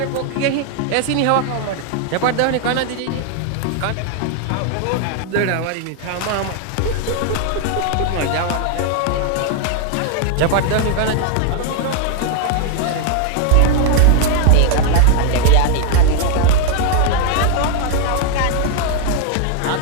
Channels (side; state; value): both; different; correlation 0.00